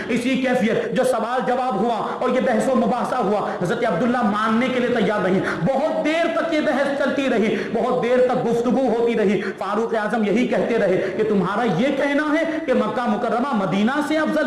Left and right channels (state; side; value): identical; both; correlation 1.00